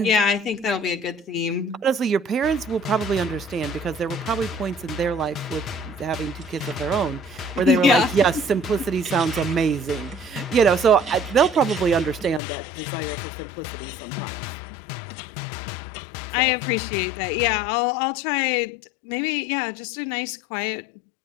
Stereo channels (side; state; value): right; drops out; at 12.4 s